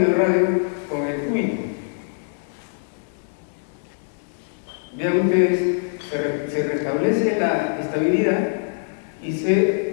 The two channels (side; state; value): right; silent; digital silence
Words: el radio como en el cúbito. Vean ustedes, se restablece la estabilidad y